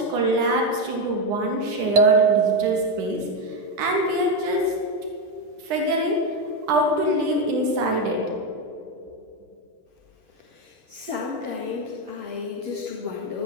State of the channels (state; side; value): late; left; 10 ms